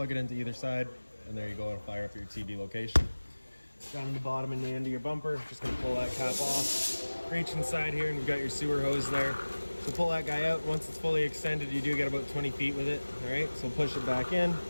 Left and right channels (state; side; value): inverted; both; correlation -1.00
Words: it into either side, and there you go. It'll fire up your TV location. Down in the bottom and the end of your bumper, just going to pull that cap off. Reach inside here, and you've got your sewer hose there. So pull that guy out. Once it's fully extended, you do get about 20 feet with it. All right, so push it back in.